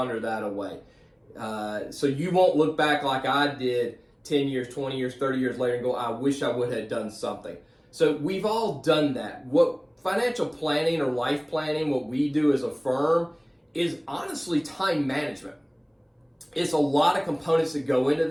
that away. So you won't look back like I did 10 years, 20 years, 30 years later and go, I wish I would have done something. So we've all done that. What financial planning or life planning, what we do as a firm, is honestly time management. It's a lot of components that go into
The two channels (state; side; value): identical; both; correlation 1.00